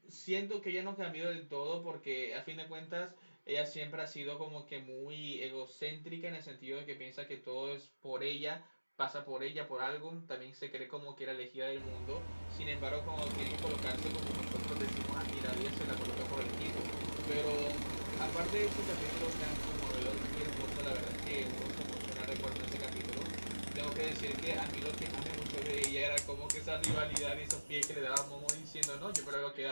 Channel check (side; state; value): both; inverted; correlation -1.00